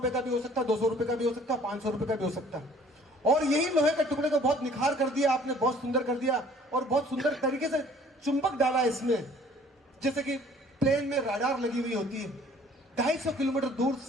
का भी हो सकता है, 200 रुपए का भी हो सकता है, 500 रुपए का भी हो सकता है। और यही लोहे के टुकड़े को बहुत निखार कर दिया आपने, बहुत सुंदर कर दिया और बहुत सुंदर तरीके से चुंबक डाला इसमें। जैसे कि प्लेन में राडार लगी हुई होती है, 250 किलोमीटर दूर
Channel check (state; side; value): normal; both; correlation 0.55